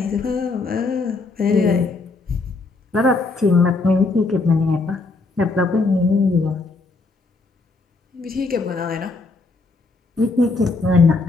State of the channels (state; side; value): quieter; right; 3.7 dB